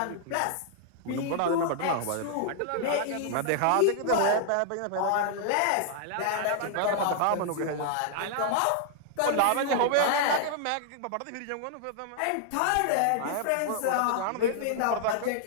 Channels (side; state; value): both; different; correlation -0.01